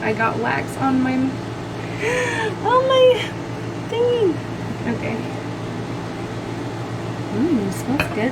got wax on my thingy. Okay. It smells good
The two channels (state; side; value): identical; both; correlation 1.00